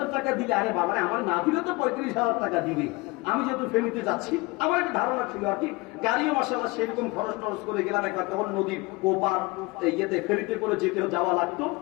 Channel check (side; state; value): right; quieter; 24.3 dB